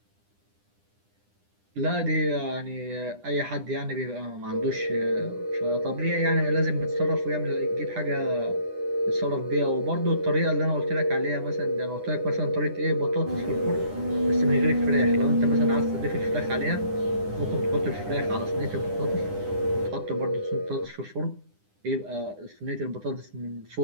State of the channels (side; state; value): left; late; 9.9 ms